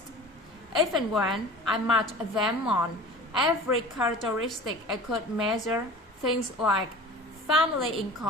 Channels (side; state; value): both; normal; correlation 0.39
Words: Even when I matched them on every characteristic I could measure, things like family